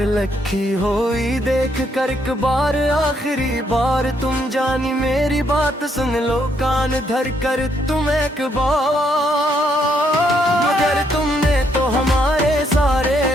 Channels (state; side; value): normal; both; correlation 0.73